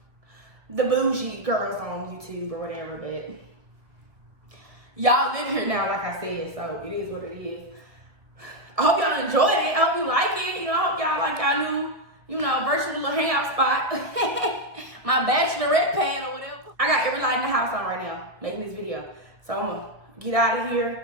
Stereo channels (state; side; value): late; left; 1.9 ms